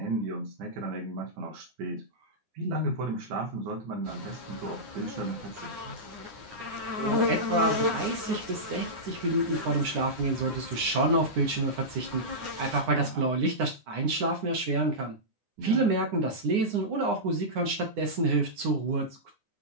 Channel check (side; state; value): left; late; 9.8 ms